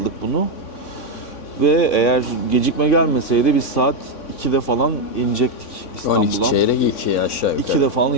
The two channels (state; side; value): late; right; 3.5 ms